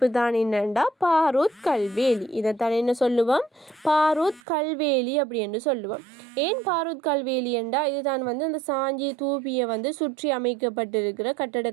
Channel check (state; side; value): drops out; left; at 4.4 s